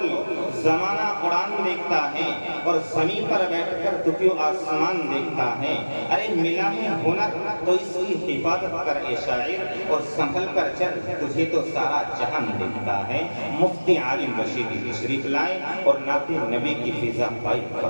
زمانہ اڑان دیکھتا ہے اور زمین پر بیٹھ کر تو کیوں آسمان دیکھتا ہے۔ ارے ملا ہے ہنر تو اس کی حفاظت کر اے شاعر، اور سنبھل کر چل تجھے تو سارا جہان دیکھتا ہے۔ مفتی عالم رشیدی تشریف لائیں اور نعت نبی کی فضا قائم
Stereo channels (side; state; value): both; inverted; correlation -1.00